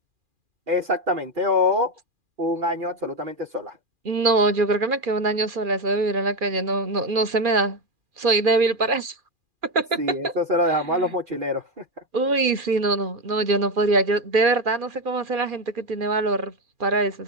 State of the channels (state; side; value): late; left; 2.4 ms